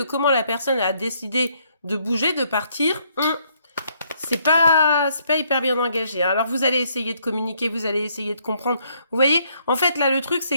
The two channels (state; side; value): inverted; both; correlation -0.70